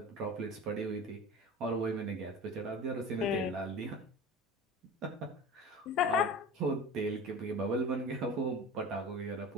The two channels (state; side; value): normal; both; correlation 0.34